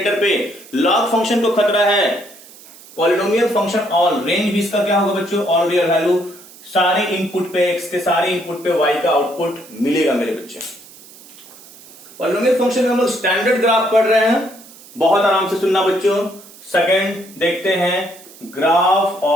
पे, लॉग फंक्शन को खतरा है, पॉलिनोमियल फंक्शन ऑल, रेंज भी इसका क्या होगा बच्चों, ऑल रियल वैल्यू, सारे इनपुट पे, एक्स के सारे इनपुट पे वाई का आउटपुट मिलेगा मेरे बच्चे। पॉलिनोमियल फंक्शन में हम लोग स्टैंडर्ड ग्राफ पढ़ रहे हैं, बहुत आराम से सुनना बच्चों। सेकंड देखते हैं graph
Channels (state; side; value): noise; right; hiss, 21 dB below the sound